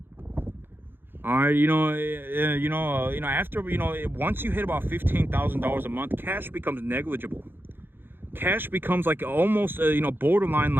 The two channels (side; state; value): left; late; 0.10 ms